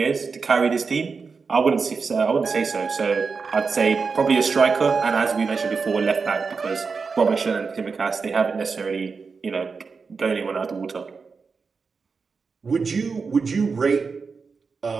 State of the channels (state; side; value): quieter; left; 5.0 dB